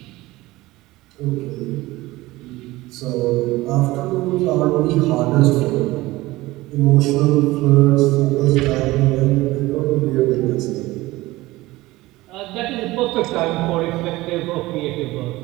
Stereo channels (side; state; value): left; quieter; 19.0 dB